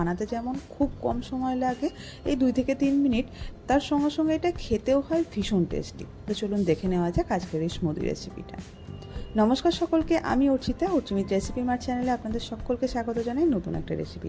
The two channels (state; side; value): identical; both; correlation 1.00